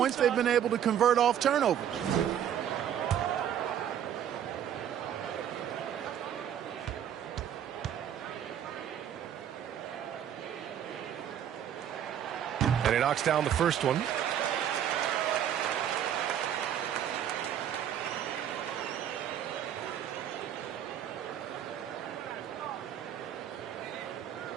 they've been able to convert off turnovers. knocks down the first one.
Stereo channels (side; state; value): left; quieter; 9.8 dB